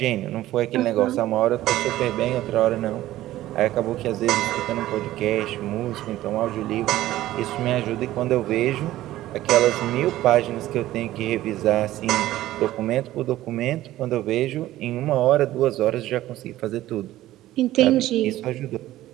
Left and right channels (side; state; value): left; quieter; 15.0 dB